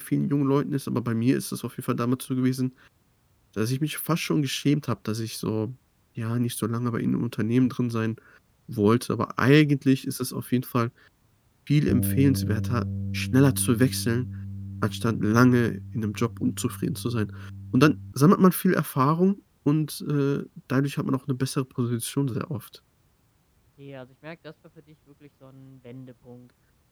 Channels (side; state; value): both; identical; correlation 1.00